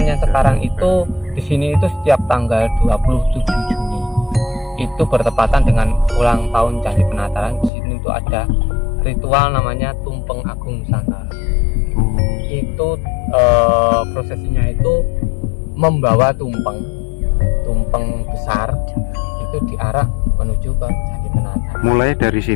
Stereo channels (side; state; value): right; drops out; at 7.7 s